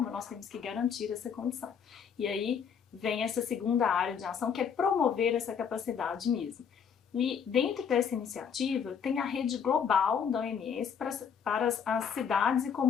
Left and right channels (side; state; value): right; quieter; 7.2 dB